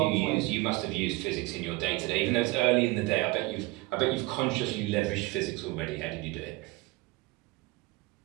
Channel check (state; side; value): quieter; left; 21.7 dB